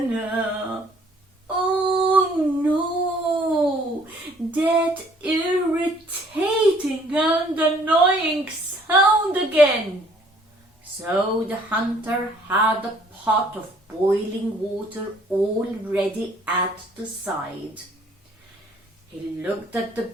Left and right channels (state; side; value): normal; both; correlation 0.60